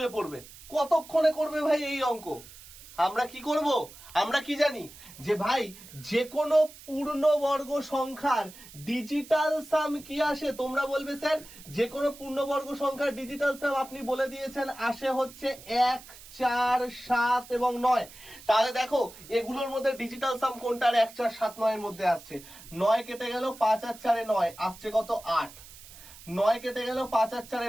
পড়বে। কতক্ষণে করবে ভাই এই অঙ্ক? আমরা কি করব? আমরা কি জানি যে ভাই যে কোনো পূর্ণবর্গ সংখ্যার ডিজিটাল সাম কি আসে? তোমরা বলবে স্যার যে কোনো পূর্ণবর্গ সংখ্যার ডিজিটাল সাম আপনি বলে দিয়েছেন আসে হচ্ছে 1, 4, 7 এবং 9। তাহলে দেখো এগুলোর মধ্যে ডিজিটাল সাম কোনটার 1, 4, 7, 9 এর মধ্যে আসছে? 9 কেটে গেল, 5 আর 4 এ 9, আসছে কত? 8। 9 কেটে গেল, 5 আর 4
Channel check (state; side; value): noise; right; hiss, 18 dB below the sound